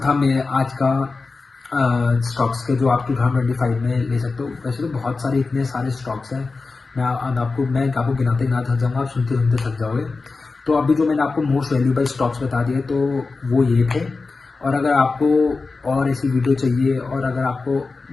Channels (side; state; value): right; quieter; 4.0 dB